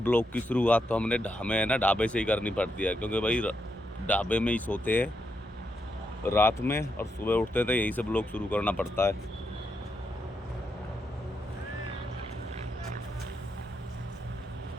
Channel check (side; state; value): both; normal; correlation 0.82